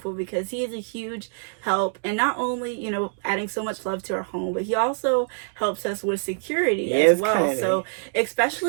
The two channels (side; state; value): left; silent; digital silence